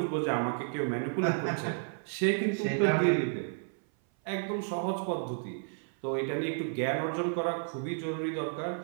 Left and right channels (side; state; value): left; silent; 57 dB below the other